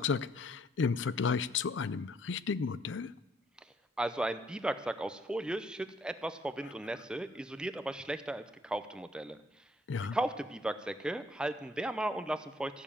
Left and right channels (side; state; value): both; normal; correlation 0.65